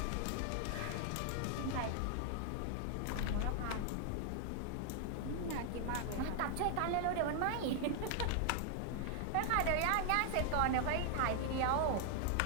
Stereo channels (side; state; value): both; different; correlation 0.00